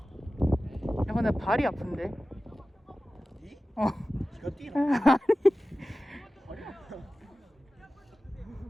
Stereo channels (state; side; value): normal; both; correlation 0.96